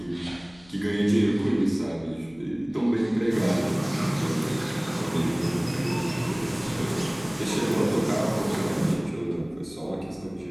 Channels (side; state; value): left; noise; hum, 26 dB below the sound